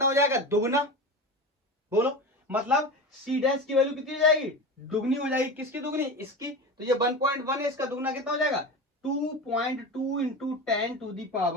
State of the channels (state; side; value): normal; both; correlation 0.27